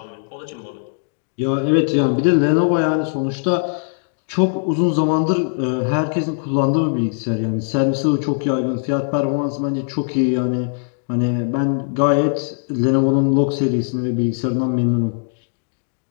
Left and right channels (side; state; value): right; silent; digital silence